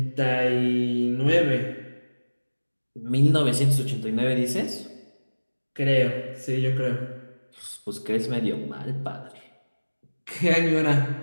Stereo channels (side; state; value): both; inverted; correlation -1.00